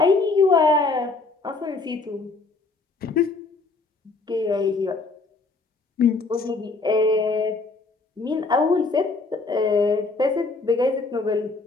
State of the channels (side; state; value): right; quieter; 3.7 dB